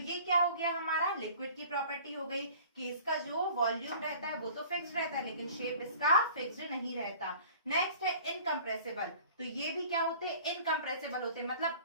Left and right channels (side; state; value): both; inverted; correlation -0.47